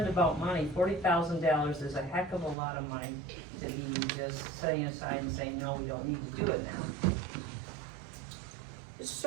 about money. $40,000 is a heck of a lot of money to be just setting aside and saying, no, we don't need to do it now.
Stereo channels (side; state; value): left; drops out; at 2.6 s